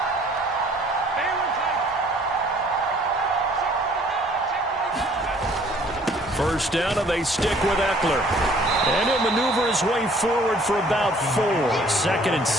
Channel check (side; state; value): both; normal; correlation 0.57